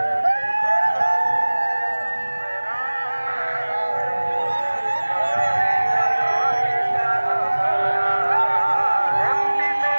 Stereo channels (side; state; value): both; inverted; correlation -1.00